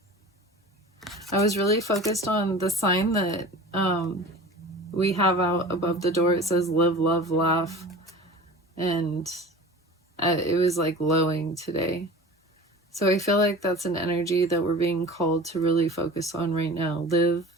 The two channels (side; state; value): both; normal; correlation 0.38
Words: I was really focused on the sign that we have out above the door. It says live, love, laugh. And it was like lowing today. So I feel like that's an energy that we're being called to really focus on right now. Live,